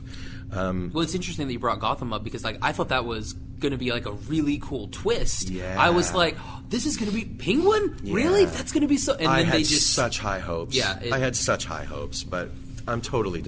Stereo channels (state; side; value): identical; both; correlation 1.00